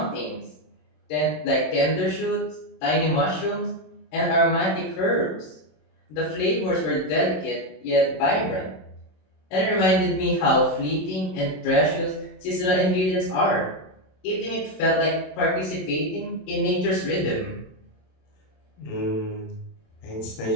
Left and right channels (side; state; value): right; late; 27 ms